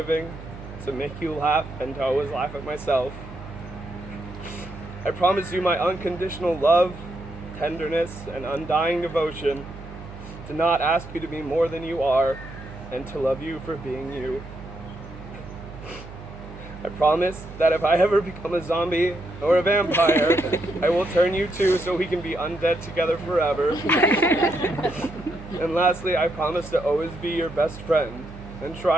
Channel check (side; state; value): right; noise; hum, 14 dB below the sound